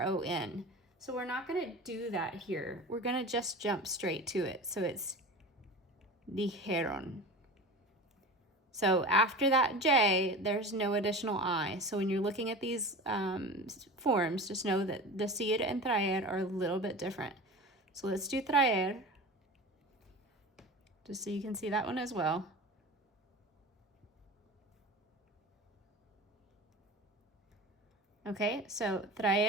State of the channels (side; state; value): both; normal; correlation 0.33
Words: So we're not going to do that here. We're going to just jump straight to it. So it's dijeron. So after that J, there's no additional I. So when you're looking at these forms, just know that decir and traer are a little bit different. So let's do traer, just so you can see that one as well. Okay, so